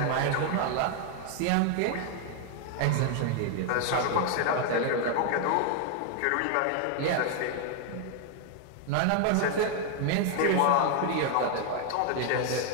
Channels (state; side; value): different; both; correlation 0.00